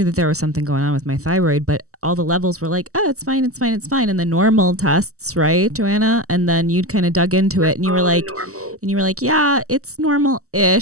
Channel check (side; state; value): left; late; 0.65 ms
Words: that there was something going on with my thyroid, but all the levels were like, oh, it's fine, it's fine, it's fine. And the normal tests, right, Joanna? And then you'd kind of dug into it and you were All the like, normal. yeah, it's